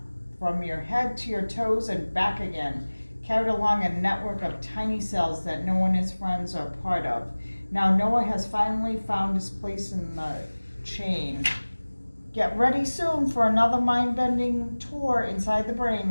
from your head to your toes and back again, carried along a network of tiny cells that Noah and his friends are part of. Now Noah has finally found his place in the chain. Get ready soon for another mind-bending tour inside the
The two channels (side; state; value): both; inverted; correlation -1.00